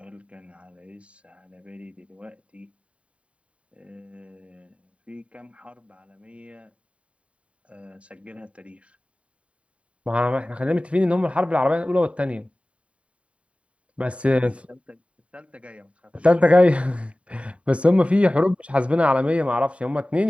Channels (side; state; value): left; late; 0.063 ms